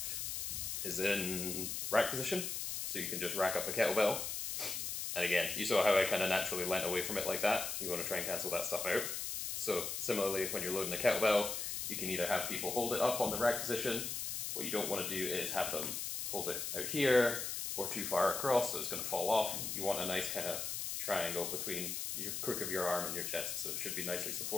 is in rack position. So you can just rack up a kettlebell. And again, you saw how I kind of naturally leant away from it like that. You want to try and cancel that stuff out. So similarly, when you're loading a kettlebell, you can either have people hold it up on the rack position. What you don't want to do is have them hold it out here, or too far across, so it's going to fall off. You want a nice kind of triangle between your crook of your arm and your chest, so it should be nicely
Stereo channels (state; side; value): noise; left; hiss, 3 dB below the sound